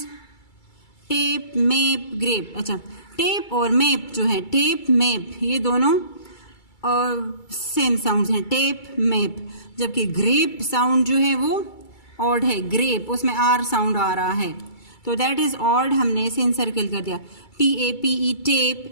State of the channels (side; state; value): right; late; 2.3 ms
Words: Tape, map, grape. अच्छा, टेप और मैप जो है, टेप, मैप, ये दोनों सेम साउंड्स हैं. Tape, map. जबकि ग्रेप साउंड जो है वो ऑड है. ग्रेप, उसमें R साउंड आ रहा है, तो दैट इज ऑड. हमने इसे इनसर्कल कर दिया. TAPE,